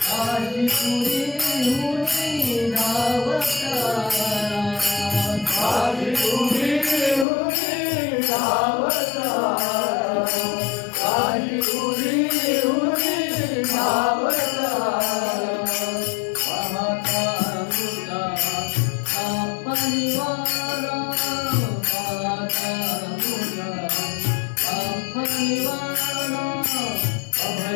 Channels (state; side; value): drops out; right; at 7.2 s